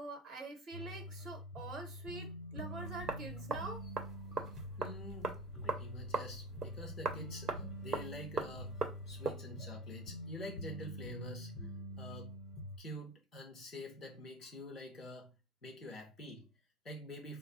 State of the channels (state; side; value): normal; both; correlation 0.32